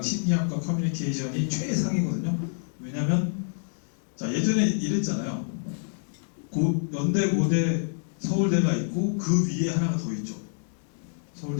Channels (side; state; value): right; silent; digital silence